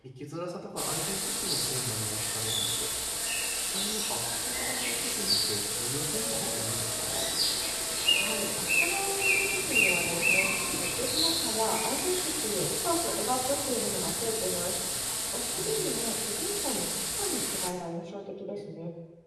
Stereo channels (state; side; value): identical; both; correlation 1.00